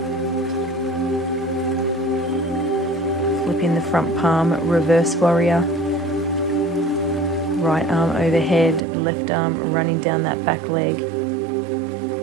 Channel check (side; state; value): left; drops out; at 8.8 s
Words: Flipping the front palm, reverse warrior. Right arm overhead, left arm running down that back leg.